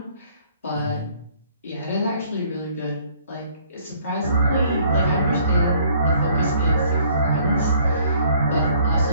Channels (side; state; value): both; inverted; correlation -0.59